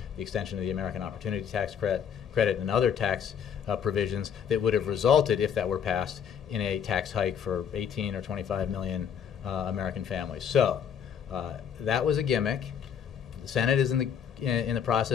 the extension of the American Opportunity Tax Credit and other tax provisions that would have resulted, if that were passed, in a tax hike for 18 or 25 million American families. So that was a gimmick. The Senate is in the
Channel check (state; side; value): quieter; right; 8.1 dB